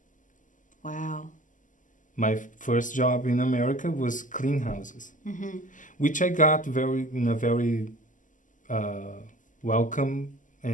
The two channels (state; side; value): late; right; 0.37 ms